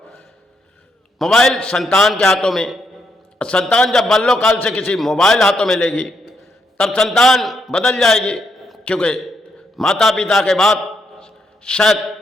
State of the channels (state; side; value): normal; both; correlation 0.78